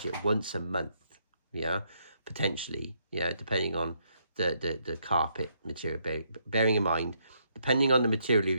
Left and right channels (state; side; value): inverted; both; correlation -0.74